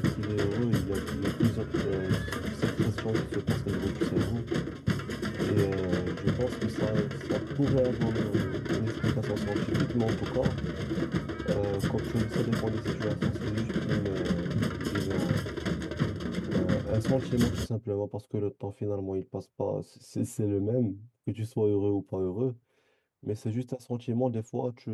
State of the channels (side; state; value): both; identical; correlation 1.00